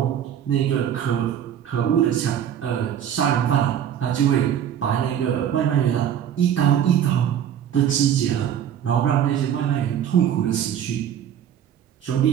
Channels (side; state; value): left; quieter; 9.6 dB